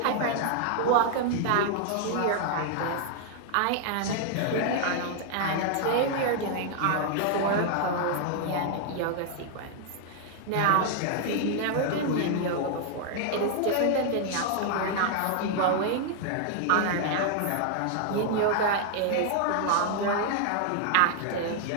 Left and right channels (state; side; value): different; both; correlation 0.00